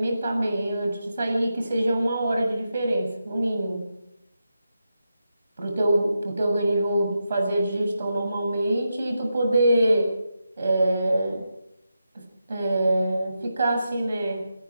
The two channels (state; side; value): inverted; both; correlation -0.87